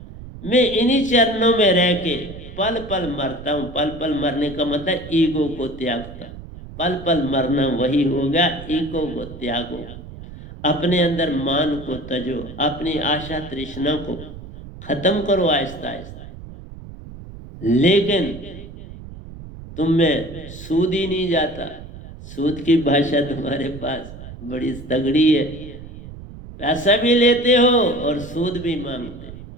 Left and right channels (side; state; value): right; noise; rumble, 14 dB below the sound